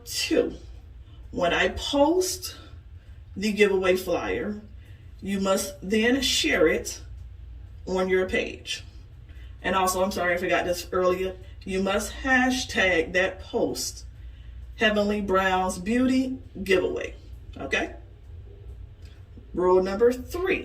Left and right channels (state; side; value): identical; both; correlation 1.00